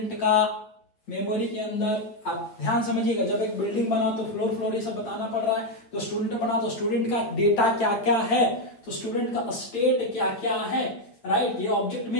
का मेमोरी के अंदर आप ध्यान समझिएगा, जब एक बिल्डिंग बना तो फ्लोर ये सब बताना पड़ रहा है, तो स्टूडेंट बना तो स्टूडेंट का डेटा क्या क्या है, तो स्टूडेंट का स्टेट क्या क्या है, राइट, ये ऑब्जेक्ट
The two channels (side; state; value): right; late; 8.7 ms